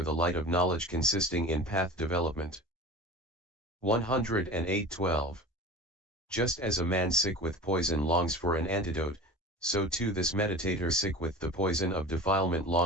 the light of knowledge consisting in path development. 108:12. Just as a man sick with poison longs for an antidote, so too this meditator sick with the poison of defilement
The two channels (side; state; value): both; normal; correlation 0.35